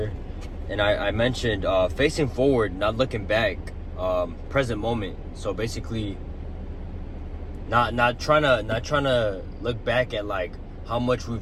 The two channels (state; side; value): identical; both; correlation 1.00